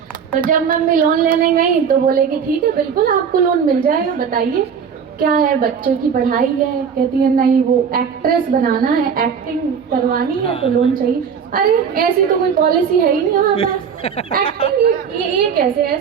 तो जब मम्मी लोन लेने गई तो बोले कि ठीक है बिल्कुल आपको लोन मिल जाएगा, बताइए क्या है, बच्चों की पढ़ाई है। कहती है नहीं, वो एक्ट्रेस बनाना है, एक्टिंग करवानी है तो लोन चाहिए। अरे ऐसी तो कोई पॉलिसी है ही नहीं हमारे पास, एक्टिंग ये कैसे,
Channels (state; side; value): quieter; left; 6.9 dB